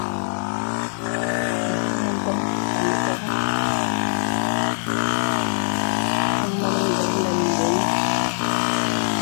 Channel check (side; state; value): right; silent; 64 dB below the other